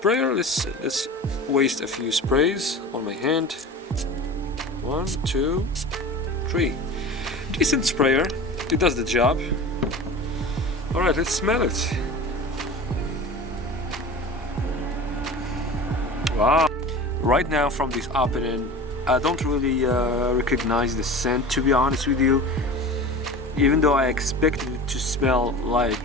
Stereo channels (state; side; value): normal; both; correlation 0.34